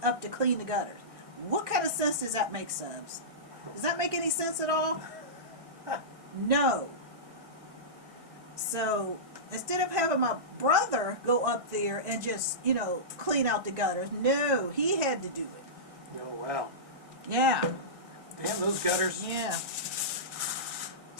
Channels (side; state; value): left; late; 1.8 ms